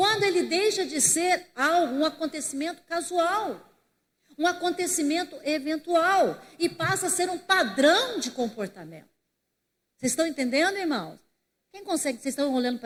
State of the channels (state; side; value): identical; both; correlation 1.00